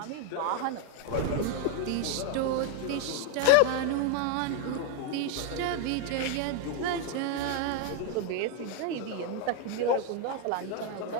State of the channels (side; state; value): both; different; correlation 0.01